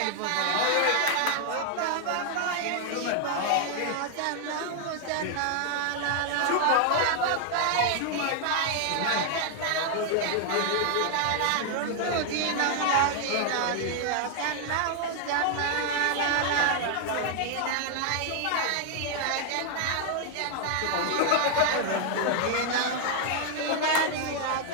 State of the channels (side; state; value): both; different; correlation 0.00